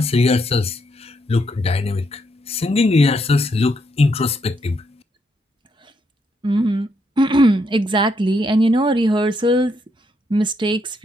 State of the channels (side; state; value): both; normal; correlation 0.76